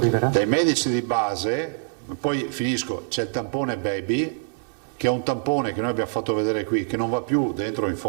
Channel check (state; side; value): silent; left; 61 dB below the other